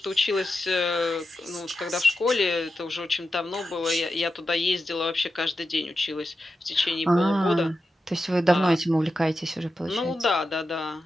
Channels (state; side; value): normal; both; correlation 0.89